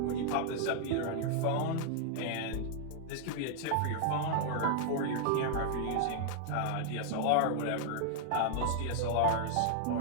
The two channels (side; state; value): both; different; correlation -0.01